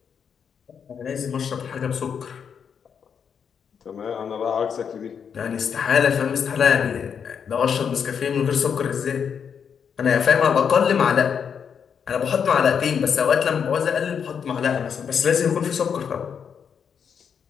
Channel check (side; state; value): right; quieter; 7.1 dB